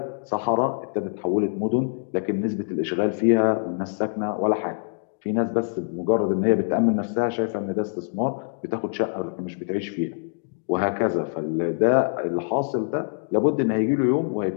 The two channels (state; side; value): silent; right; digital silence